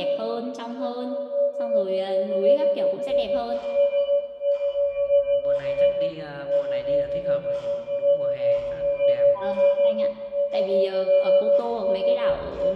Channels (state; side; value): identical; both; correlation 1.00